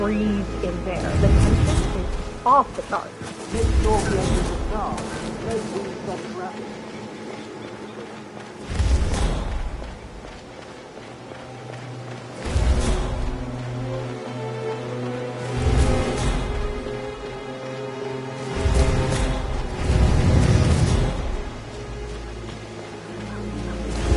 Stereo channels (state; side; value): identical; both; correlation 1.00